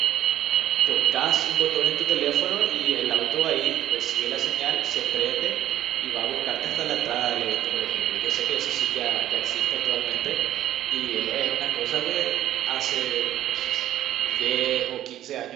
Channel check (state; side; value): quieter; left; 12.7 dB